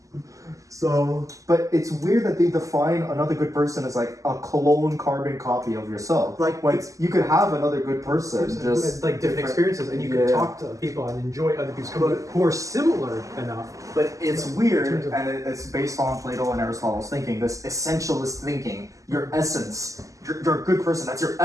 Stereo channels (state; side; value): late; left; 0.16 ms